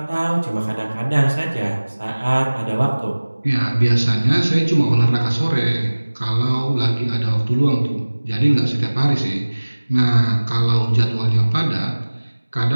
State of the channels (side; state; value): both; inverted; correlation -1.00